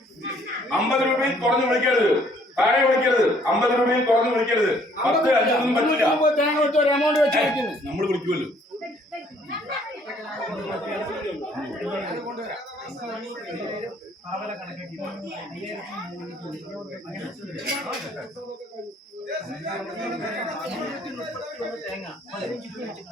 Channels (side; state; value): both; normal; correlation 0.62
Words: 50 രൂപയിൽ കുറഞ്ഞ് വിളിക്കരുത്, താഴെ വിളിക്കരുത്. 50 രൂപയിൽ കുറഞ്ഞ് വിളിക്കരുത്. 10 5 പറ്റില്ല. നമ്മൾ വിളിക്കുമല്ലോ.